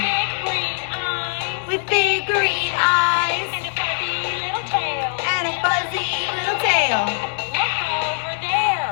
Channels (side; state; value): right; silent; 65 dB below the other